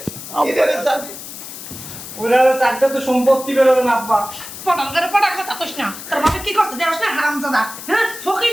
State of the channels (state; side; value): noise; left; hiss, 12 dB below the sound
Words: এটারে জানি। ওরা চারটা তো সম্পত্তি বেরোবে না আব্বা। পটাল করে পটাল কথা কইস না। তোর বাবা কি করছে দেওস না হারামজাদা? হ্যাঁ,